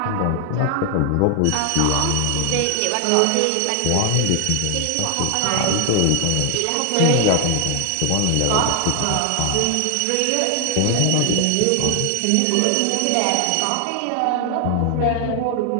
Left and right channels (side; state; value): both; different; correlation 0.00